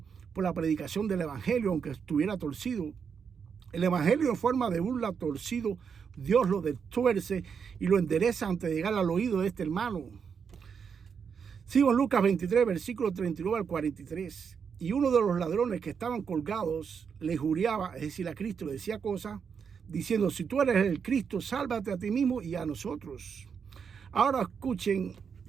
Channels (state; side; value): quieter; left; 6.6 dB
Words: por la predicación del evangelio, aunque estuviera torcido. El evangelio en forma de burla torcido, Dios lo destuerce y lo endereza antes de llegar al oído de este hermano. Sigo en Lucas 23, versículo 39 al 43. Y uno de los ladrones que estaban colgados le juraba, es decir, a Cristo le decía cosas, diciendo: si tú eres el Cristo, sálvate a ti mismo y a nosotros. Ahora escuchen